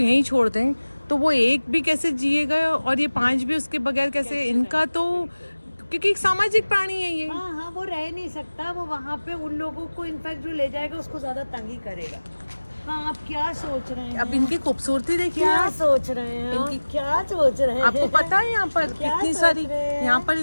छोड़ दें, तो वो एक भी कैसे जिएगा, और ये 5 भी उसके बगैर कैसे। इनका तो क्योंकि एक सामाजिक प्राणी है ये। हाँ हाँ, वो रह नहीं सकता, वो वहाँ पे उन लोगों को इनफैक्ट जो ले जाएगा उसको ज्यादा तंगी करेगा। हाँ, आप क्या सोच रहे हैं? अब इनकी खूबसूरती देखिए, क्या सोच रहे हैं? इनकी क्या सोच रहे हैं? आपको पता है यहाँ पर क्या कितनी सोच सारी, रहे हैं? यहाँ पर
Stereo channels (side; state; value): both; inverted; correlation -1.00